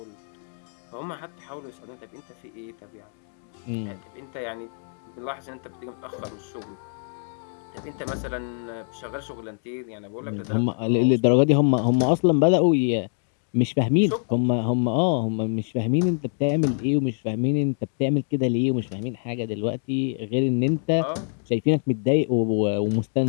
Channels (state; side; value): silent; right; 60 dB below the other